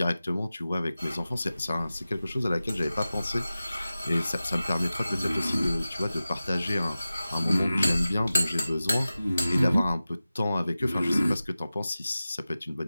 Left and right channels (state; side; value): inverted; both; correlation -0.95